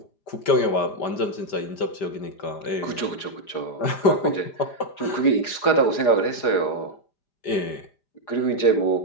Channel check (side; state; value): right; late; 4.8 ms